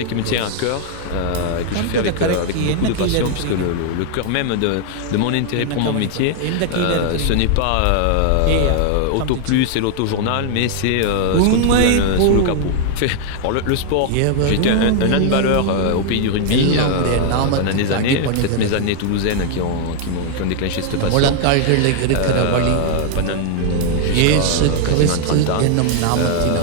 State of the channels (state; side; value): different; both; correlation 0.00